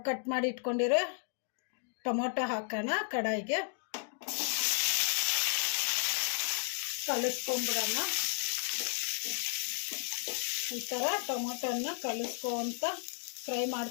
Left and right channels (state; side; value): silent; right; 55 dB below the other